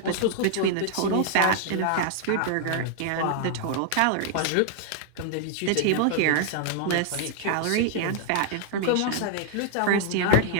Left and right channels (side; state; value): both; different; correlation 0.00